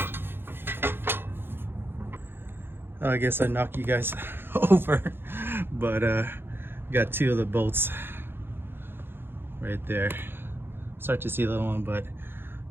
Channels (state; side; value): late; left; 0.10 ms